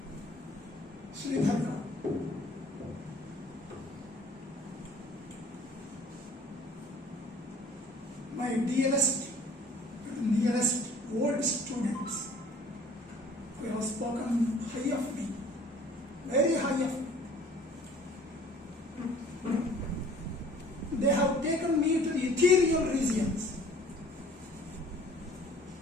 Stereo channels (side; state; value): both; normal; correlation 0.52